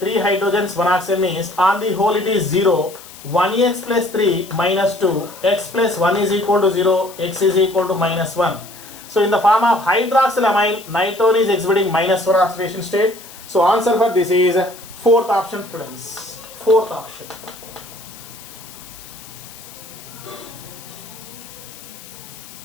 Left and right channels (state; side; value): noise; left; hiss, 18 dB below the sound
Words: hydrogens, 1 oxygen means on the whole it is 0. 1x plus 3 minus 2, x plus 1 is equal to 0, x is equal to minus 1. So in the form of hydroxylamine, nitrogen is exhibiting minus 1 oxidation state. So answer for this is fourth option, students. Fourth option.